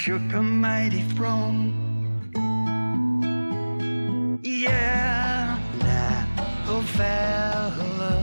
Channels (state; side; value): inverted; both; correlation -1.00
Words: a mighty throne. Yeah, oh